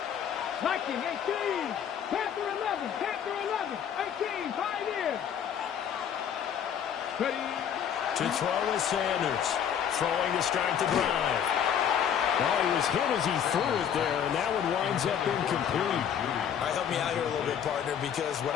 Viking 18, Panther 11, 18, Pioneers. Ready. To throw is Sanders, throwing to start the drive. Well, he was hit as he threw it there, and that one winds up incomplete. All right, help me out here a little bit, partner, because what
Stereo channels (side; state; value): right; quieter; 8.7 dB